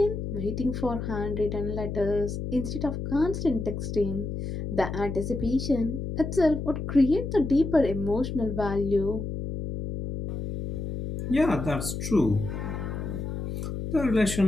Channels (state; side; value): noise; left; hum, 5 dB below the sound